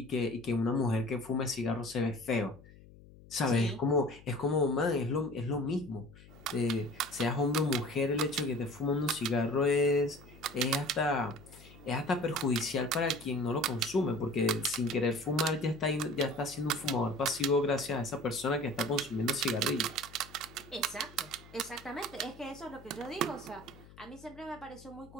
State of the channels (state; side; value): noise; left; hum, 21 dB below the sound